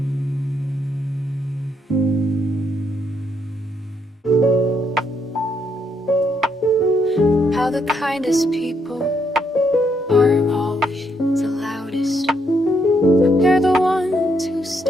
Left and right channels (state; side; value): normal; both; correlation 0.75